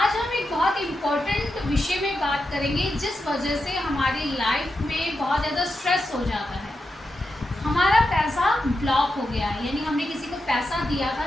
हम एक बहुत इम्पोर्टेंट विषय में बात करेंगे जिस वजह से हमारी लाइफ में बहुत ज़्यादा स्ट्रेस हो जाता है। हमारा पैसा ब्लॉक हो गया है, यानी हमने किसी को पैसा दिया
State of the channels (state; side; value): normal; both; correlation 0.88